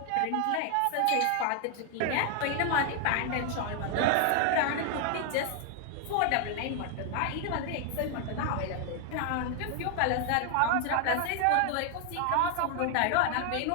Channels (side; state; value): both; different; correlation 0.00